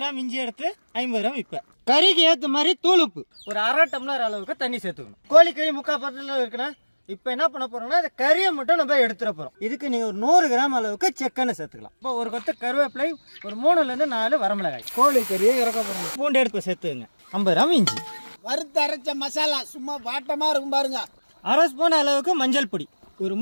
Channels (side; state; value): both; inverted; correlation -1.00